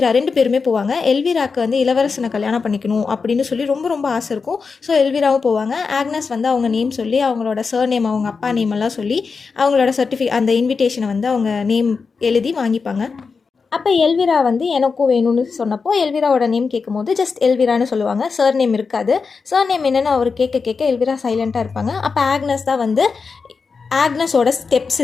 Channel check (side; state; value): right; quieter; 5.0 dB